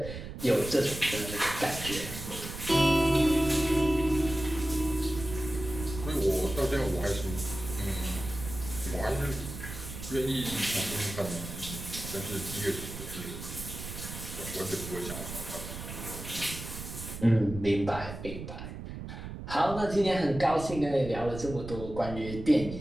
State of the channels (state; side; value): noise; right; rumble, 9 dB below the sound